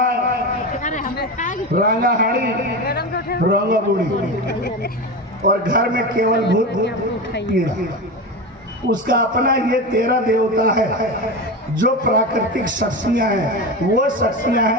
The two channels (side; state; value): both; normal; correlation 0.22